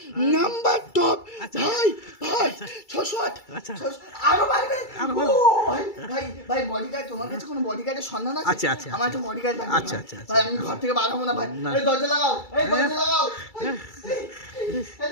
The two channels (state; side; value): late; right; 2.3 ms